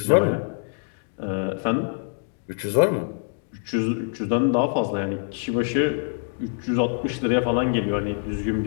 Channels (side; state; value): right; silent; digital silence